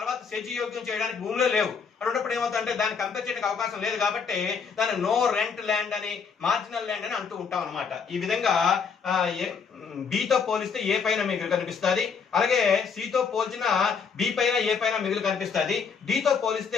సెజ్యోగ్యం చేయడానికి భూములే లేవు. అన్నప్పుడు ఏమవుతుందంటే దాన్ని కంపేర్ చేయడానికి అవకాశం లేదు కాబట్టి దాన్ని నో రెంట్ ల్యాండ్ అని, మార్జినల్ ల్యాండ్ అని అంటూ ఉంటాం అనమాట. ఈ విధంగా బితో పోలిస్తే ఏ పైన మిగులు కనిపిస్తుంది, అలాగే సితో పోల్చిన బి పైన ఏ పైన మిగులు కనిపిస్తుంది, డితో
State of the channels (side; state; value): right; quieter; 5.9 dB